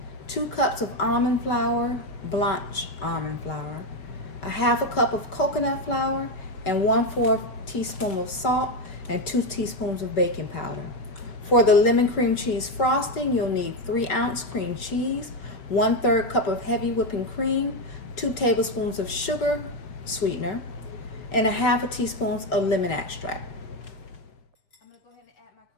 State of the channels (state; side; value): late; right; 5.8 ms